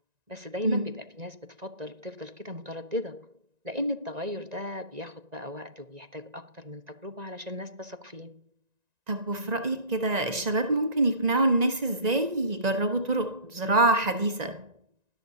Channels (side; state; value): left; late; 1.9 ms